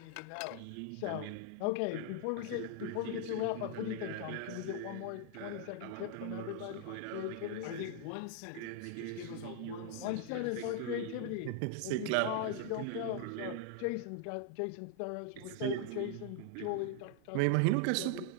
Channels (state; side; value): different; both; correlation 0.00